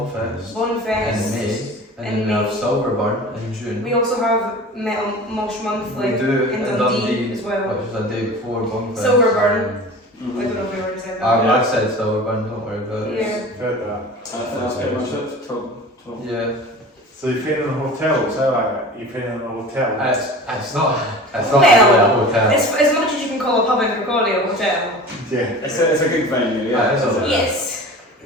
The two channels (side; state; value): both; normal; correlation 0.38